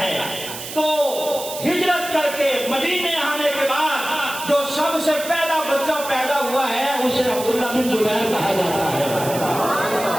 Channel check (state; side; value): noise; right; hiss, 10 dB below the sound